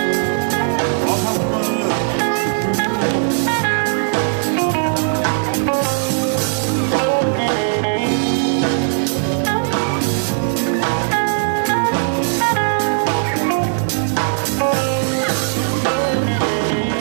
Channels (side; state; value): left; silent; digital silence